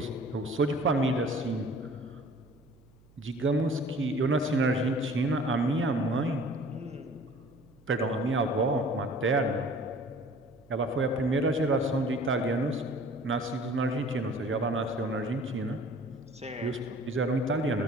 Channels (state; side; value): noise; right; hum, 28 dB below the sound